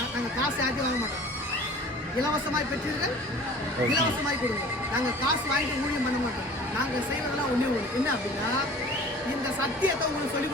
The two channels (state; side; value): normal; both; correlation 0.44